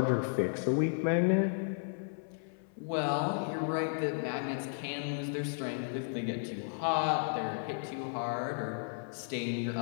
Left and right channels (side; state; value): right; silent; 55 dB below the other